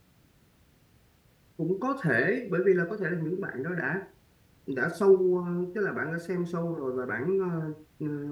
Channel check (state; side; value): identical; both; correlation 1.00